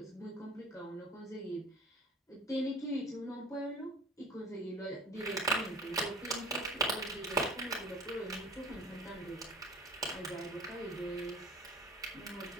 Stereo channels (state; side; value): normal; both; correlation 0.43